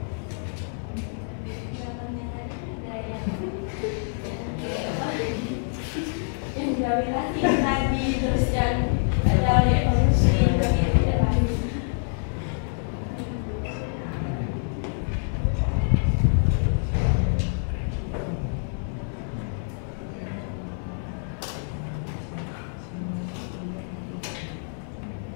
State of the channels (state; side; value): silent; right; digital silence